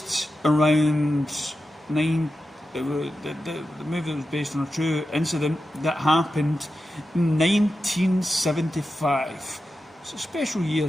around the movie was based on a true incident that happened in 1975. It's a special year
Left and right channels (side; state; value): both; normal; correlation 0.91